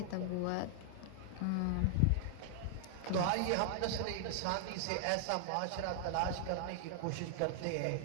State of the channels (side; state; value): both; different; correlation 0.00